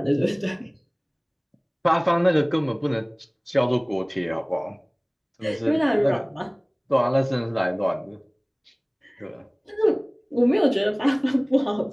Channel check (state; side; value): identical; both; correlation 1.00